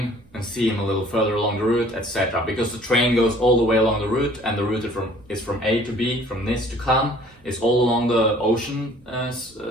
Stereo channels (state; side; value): noise; right; rumble, 29 dB below the sound